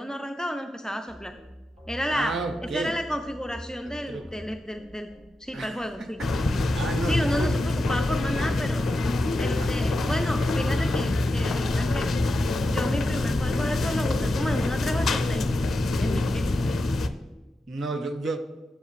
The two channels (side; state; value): both; normal; correlation 0.89